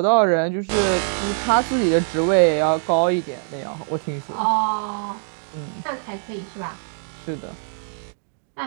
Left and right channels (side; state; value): left; silent; digital silence